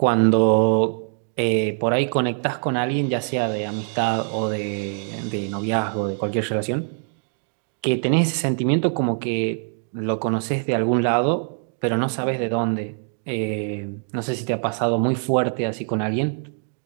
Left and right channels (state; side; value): silent; left; 63 dB below the other